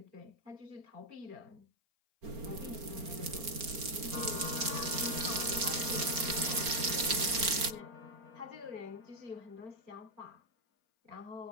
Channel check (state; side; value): late; left; 4.4 ms